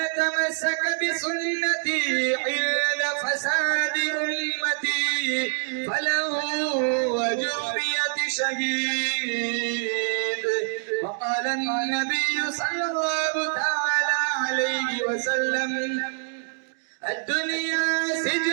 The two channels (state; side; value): silent; left; 61 dB below the other